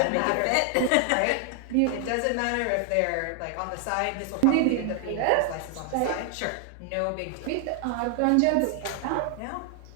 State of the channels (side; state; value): both; different; correlation 0.00